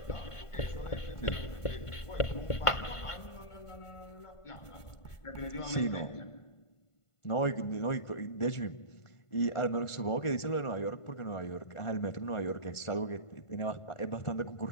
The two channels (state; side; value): late; right; 1.5 ms